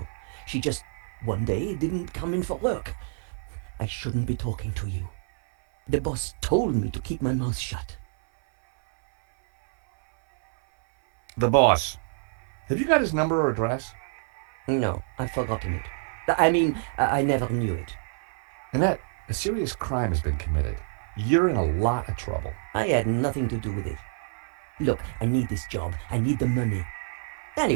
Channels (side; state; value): left; silent; digital silence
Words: She just, one day, didn't come in for work. I shouldn't be talking to you. The boss told me to keep my mouth shut. The boss. Have you got his number or address? No, I've forgotten it. I mean, I never knew it. Annette, a serious crime has been committed. You're in a lot of trouble. I had nothing to do with it. Look, I need this job. I need the money.